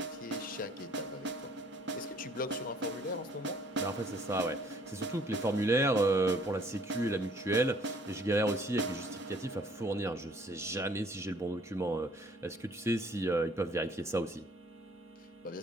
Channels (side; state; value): both; normal; correlation 0.58